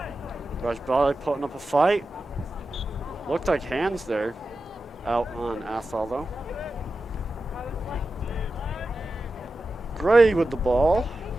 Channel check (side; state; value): both; normal; correlation 0.92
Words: Rajbali putting up a fight. Looked like hands there. Out on Athol though. Gray with the ball.